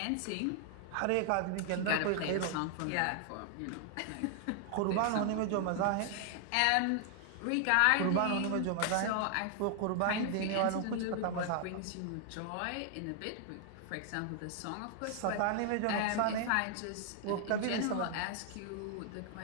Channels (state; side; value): different; both; correlation 0.00